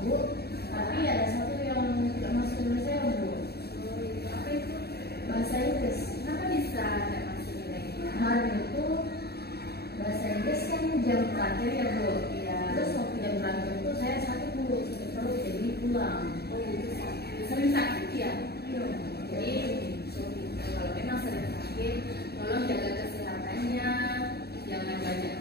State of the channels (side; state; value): right; late; 0.47 ms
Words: Bu. Tapi ada satu yang tidak masuk nilai saya, Bu. Oh, itu apa itu? Bahasa Inggris. Kenapa bisa tidak masuk nilainya? Kemarin itu bahasa Inggris kan jam terakhir ya, Bu. Iya. Terus waktu jam terakhir itu saya sakit, Bu. Sakit perut, jadi pulang. Oh, itu sakit. Sering sakit ya? Iya. Jadi kalau memang sering sakit, tolong jaga kesehatannya, jangan banyak